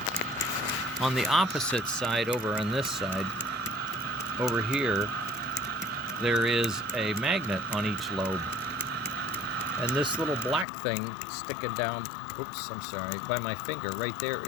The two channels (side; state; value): right; drops out; at 10.7 s